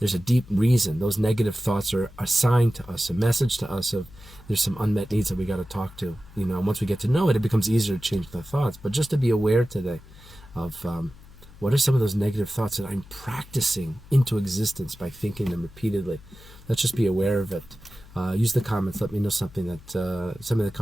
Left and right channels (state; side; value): noise; left; hum, 21 dB below the sound